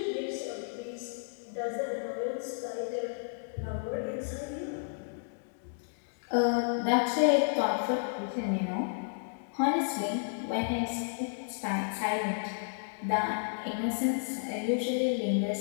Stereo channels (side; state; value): right; silent; 56 dB below the other